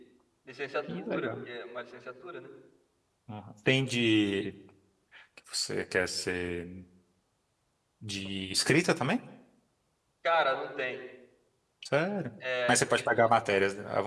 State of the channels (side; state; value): both; identical; correlation 1.00